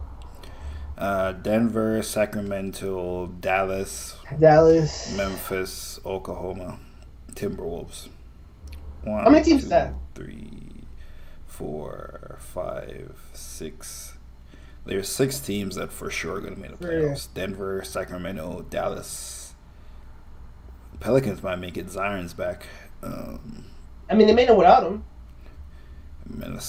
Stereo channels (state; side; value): identical; both; correlation 1.00